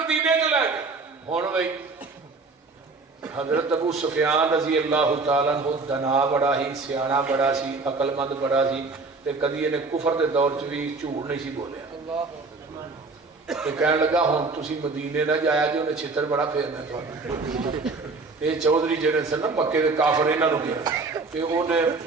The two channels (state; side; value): quieter; left; 3.8 dB